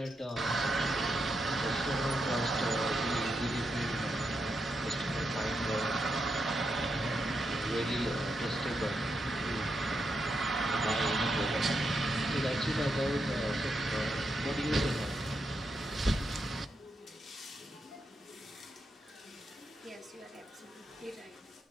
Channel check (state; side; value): normal; both; correlation 0.83